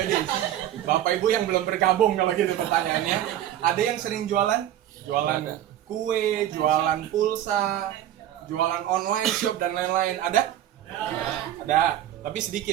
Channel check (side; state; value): left; quieter; 11.9 dB